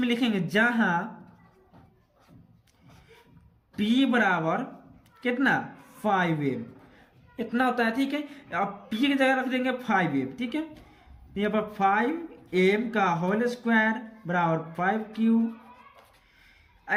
लिखेंगे जहां P बराबर कितना 5m, इतना होता है, ठीक है। अब P की जगह रख देंगे 5m, ठीक है। यहाँ पर 5m का होल स्क्वायर बराबर 5Q,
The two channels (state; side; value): identical; both; correlation 1.00